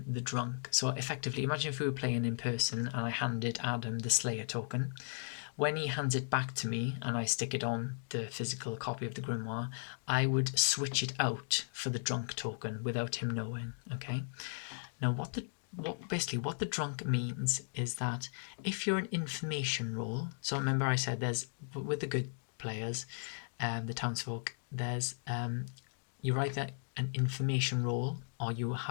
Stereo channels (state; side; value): silent; right; digital silence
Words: the drunk. So effectively, imagine if we were playing in person and I handed Adam the Slayer token. When he hands it back to me and I stick it on the physical copy of the grimoire, I would switch it out for the drunk token without him knowing. Okay. Now, what the drunk means is that if you're an information role, so remember I said there's, with the good players, the townsfolk, there's you're either an information role or you